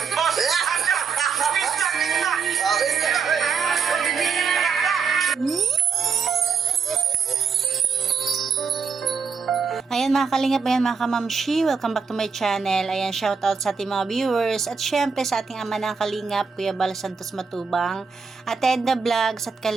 Ayan mga kalingap, ayan mga kamamshi, welcome back to my channel. Ayan, shoutout sa ating mga viewers at syempre sa ating ama ng kalingap, Kuya Bal Santos Matubang, at Edna Vlogs at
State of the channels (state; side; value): quieter; left; 5.7 dB